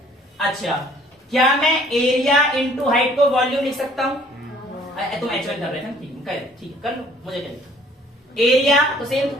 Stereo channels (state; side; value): normal; both; correlation 0.57